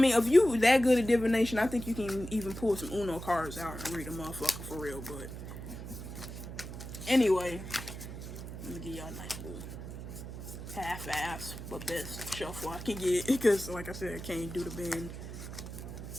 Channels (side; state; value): right; noise; hum, 9 dB below the sound